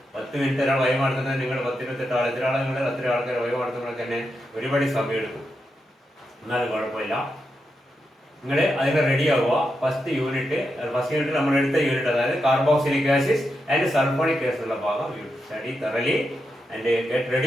10 മിനിറ്റ് ഒരാൾ വൈവ നടത്തുന്നത് നിങ്ങൾ 10-28 ആൾ, എത്ര ആളെ നിങ്ങൾ അത്ര ആൾക്കാർ വൈവ നടത്തുമ്പോൾ തന്നെ ഒരുപാട് സമയം എടുക്കും. എന്നാലും കുഴപ്പമില്ല, നിങ്ങൾ അതിന് റെഡി ആവുക. ഫസ്റ്റ് യൂണിറ്റ് നമ്മൾ എടുത്ത യൂണിറ്റ്, അതായത് carboxylic acids and sulphonic acid ഉള്ള ഭാഗം you study thoroughly and get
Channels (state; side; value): normal; both; correlation 0.86